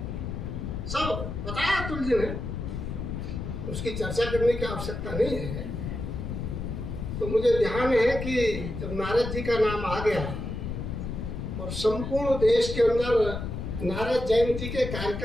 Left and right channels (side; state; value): left; noise; rumble, 5 dB below the sound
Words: सब बताया अतुल जी ने, उसकी चर्चा करने की आवश्यकता नहीं है। तो मुझे ध्यान है कि जब नारद जी का नाम आ गया और संपूर्ण देश के अंदर नारद जयंती के